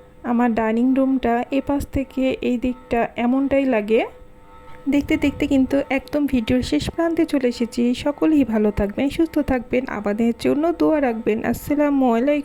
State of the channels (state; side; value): identical; both; correlation 1.00